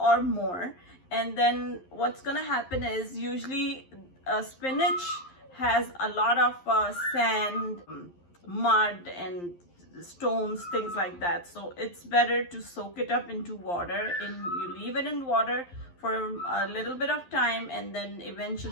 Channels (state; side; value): late; right; 11 ms